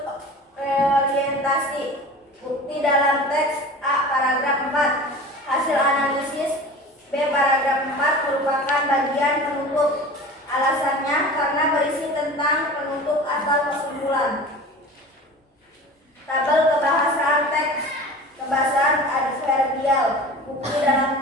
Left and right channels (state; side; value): normal; both; correlation 0.37